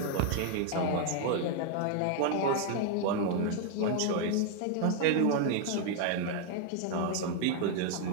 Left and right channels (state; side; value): different; both; correlation 0.01